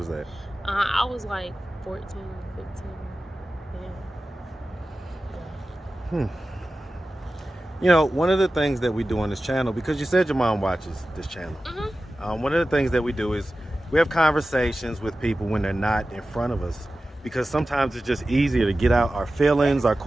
that? I was like 14, 15. Yeah. You know, one of the things that we do on this channel, because you said your mom watches this channel, one of the things that we do is we have conversations with people when they're not in front of us, because sometimes it's just easier to get out our feelings, our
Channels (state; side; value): normal; both; correlation 0.95